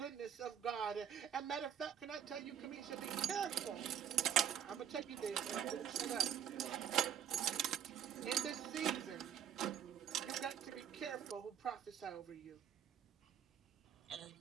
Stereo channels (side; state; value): left; quieter; 9.1 dB